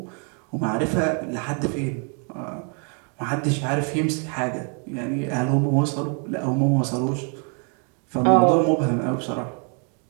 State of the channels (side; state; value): left; quieter; 39.2 dB